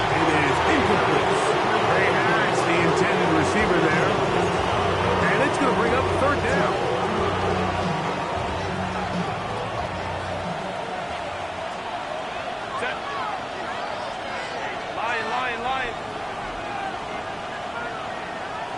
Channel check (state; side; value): identical; both; correlation 1.00